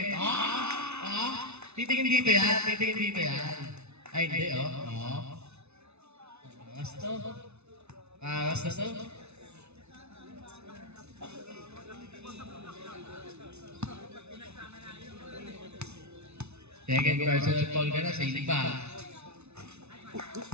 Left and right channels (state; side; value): late; left; 0.81 ms